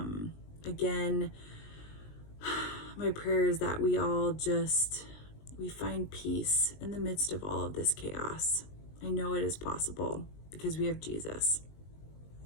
again, my prayer is that we all we find peace in the midst of all of this chaos. I know it is possible because we have Jesus.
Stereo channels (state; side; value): late; right; 19 ms